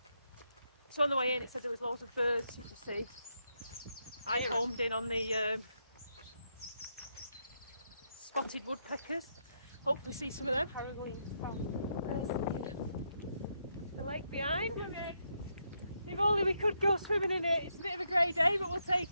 So on the way in it said there was loads of birds you could see. I homed in on the spotted woodpeckers. Hopefully see some of them. There's the lake behind. If only we could go swimming in it. It's a bit of a grey day, but we'll take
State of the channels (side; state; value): both; inverted; correlation -0.80